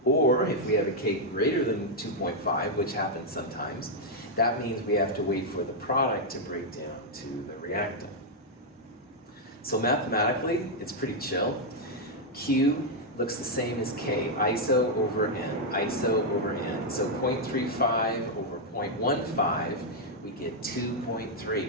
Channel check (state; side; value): normal; both; correlation -0.02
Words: Or if we have a K greater than 2.5, which happens sometimes, that means we have to wait for the product to break down to the reactant. So mathematically, it's pretty chill. Q looks the same as K, iso over N, iso over N. So 0.35 over 0.15 we get